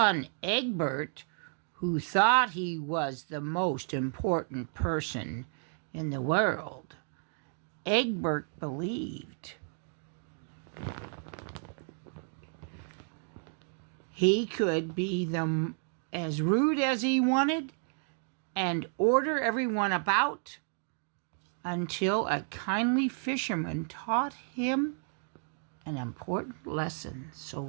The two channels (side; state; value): left; silent; 56 dB below the other